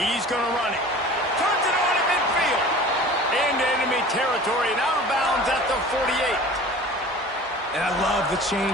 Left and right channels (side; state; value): both; normal; correlation 0.41